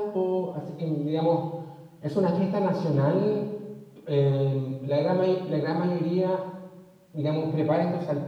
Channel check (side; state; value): both; identical; correlation 1.00